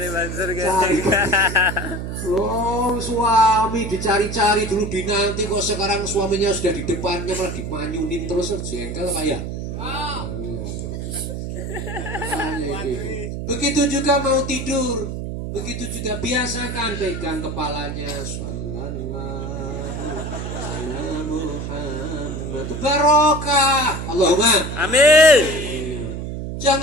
Mansur Cari. Suami dicari-cari dulu dinanti kok sekarang suaminya sudah di depannya malah dimanyunin terus jengkel Pak ya. Begitu juga mau tidur. Begitu juga biasakan pegang kepalanya. Sallallahu ala Muhammad. Barokah. Allahumma. Amin.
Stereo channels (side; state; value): right; noise; hum, 5 dB below the sound